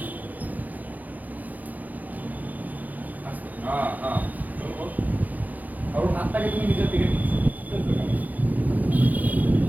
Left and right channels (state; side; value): late; left; 0.081 ms